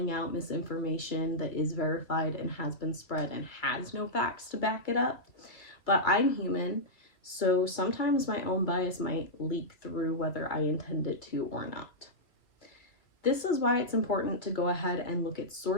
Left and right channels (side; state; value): right; late; 2.4 ms